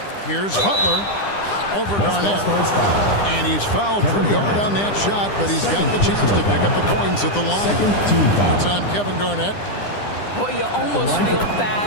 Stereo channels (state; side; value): late; right; 9.9 ms